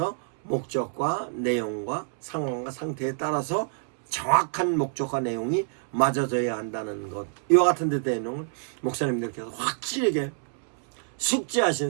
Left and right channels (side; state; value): left; silent; 60 dB below the other